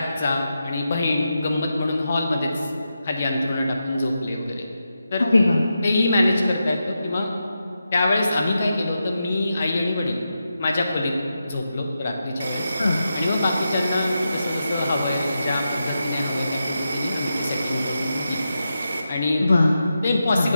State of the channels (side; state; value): both; inverted; correlation -0.88